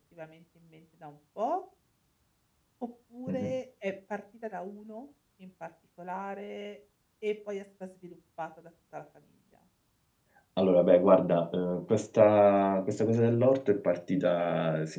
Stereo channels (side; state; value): both; identical; correlation 1.00